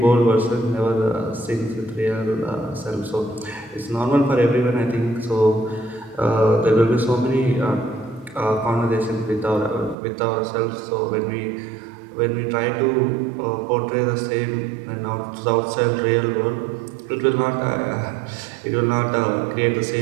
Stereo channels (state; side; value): drops out; left; at 10.0 s